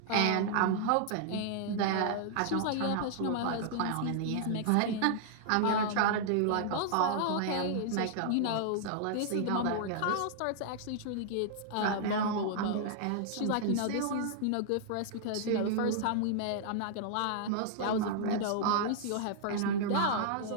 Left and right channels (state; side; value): different; both; correlation -0.01